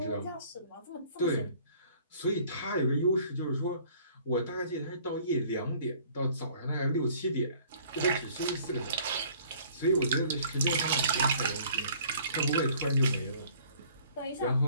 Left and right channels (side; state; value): both; inverted; correlation -0.55